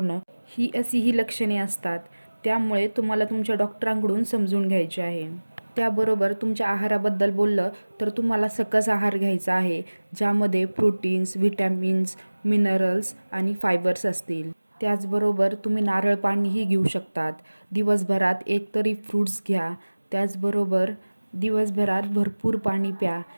ही अशी ही लक्षणे असतात. त्यामुळे तुम्हाला तुमच्या डॉक्टरांकडून समजून घ्यायचे आहे. त्याबरोबर तुमच्या आहाराबद्दल बोललं तर तुम्हाला सकस आहार घ्यायचा आहे, ज्यामध्ये प्रोटीन्स, व्हिटॅमिन्स, मिनरल्स आणि फायबर्स असतील. त्याचबरोबर तुम्ही नारळ पाणीही घेऊ शकतात. दिवसभरात एकतरी फ्रूट्स घ्या. त्याचबरोबर दिवसभरात भरपूर पाणी प्या,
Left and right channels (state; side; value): inverted; both; correlation -1.00